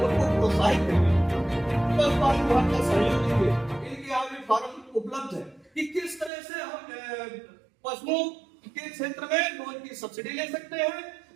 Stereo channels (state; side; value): drops out; left; at 6.3 s